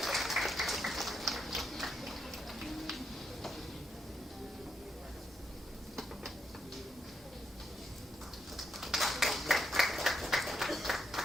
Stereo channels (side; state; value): both; normal; correlation 0.81